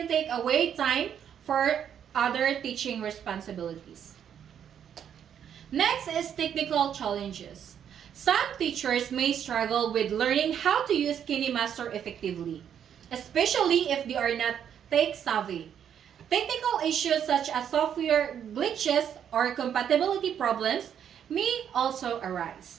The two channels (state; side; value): quieter; left; 8.8 dB